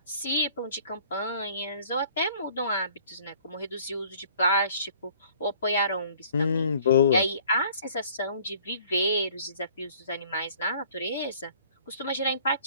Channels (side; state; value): both; inverted; correlation -0.55